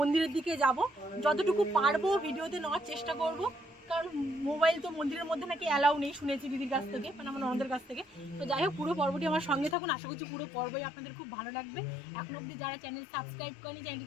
দিকে যাব। যতটুকু পারবো ভিডিওতে নেওয়ার চেষ্টা করব, কারণ মোবাইল তো মন্দিরের মধ্যে নাকি অ্যালাউ নেই শুনেছি দিদির কাছ থেকে, মানে আমার ননদের কাছ থেকে। তো যাই হোক, পুরো পর্বটি আমার সঙ্গে থাকুন, আশা করছি পুরো পর্বই আপনাদের খুব ভালো লাগবে। এখন অবধি যারা চ্যানেল সাবস্ক্রাইব করেনি,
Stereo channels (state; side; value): drops out; right; at 9.8 s